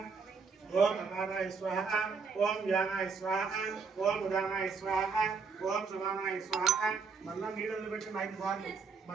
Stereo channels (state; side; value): quieter; left; 5.0 dB